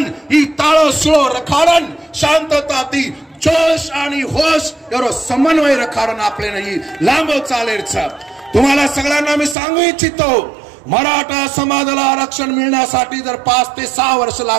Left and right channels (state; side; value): drops out; left; at 9.6 s